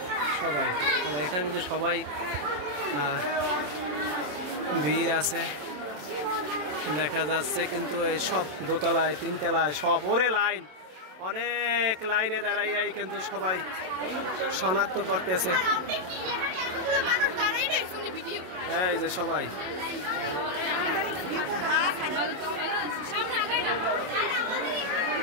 সবাই এখানে কিন্তু সবাই ভিড় আছে দেখা যাচ্ছে। কিন্তু এই সব দোতলায় তিনতলায় সব লাইন, অনেক লাইনে দাঁড়াইয়াই কিন্তু সবাই শনাক্ত করতেছে। এই যে সবাই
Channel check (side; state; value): left; late; 27 ms